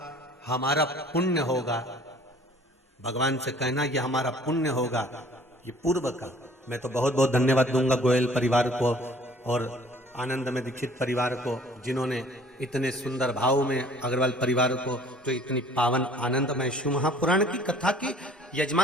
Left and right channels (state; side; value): normal; both; correlation 0.53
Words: हमारा पुण्य होगा, भगवान से कहना ये हमारा पुण्य होगा, ये पूर्व का। मैं तो बहुत बहुत धन्यवाद दूंगा गोयल परिवार को और आनंद में दीक्षित परिवार को, जिन्होंने इतने सुंदर भाव में, अग्रवाल परिवार को जो इतनी पावन आनंदमय शिव महापुराण की कथा की